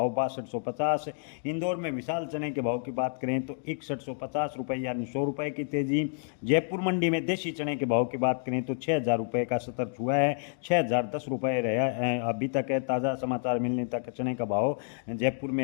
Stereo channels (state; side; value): silent; right; digital silence